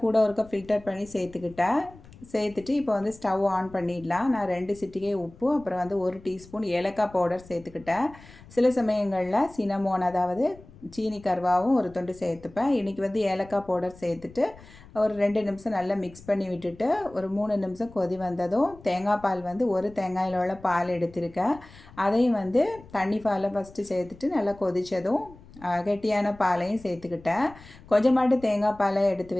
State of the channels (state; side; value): noise; left; rumble, 22 dB below the sound